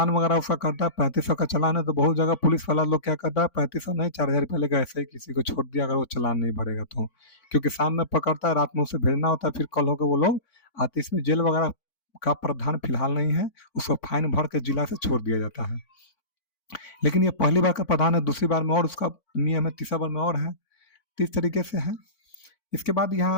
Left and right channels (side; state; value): right; late; 4.5 ms